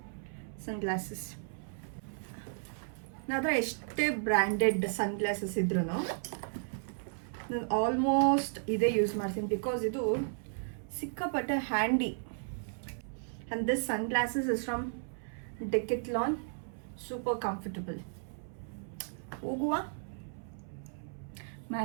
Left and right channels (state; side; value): silent; left; 55 dB below the other